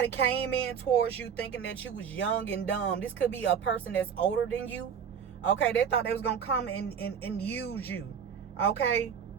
came in towards you thinking that you was young and dumb. This could be a person that's older than you. Okay, they thought they was going to come and use you. Okay?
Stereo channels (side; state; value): left; quieter; 7.5 dB